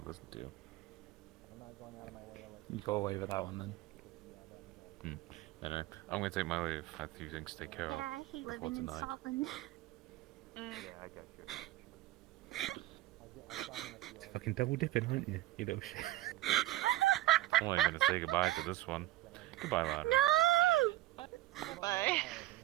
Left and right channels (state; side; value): quieter; left; 16.0 dB